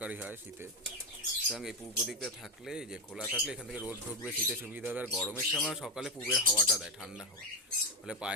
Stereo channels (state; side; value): normal; both; correlation 0.10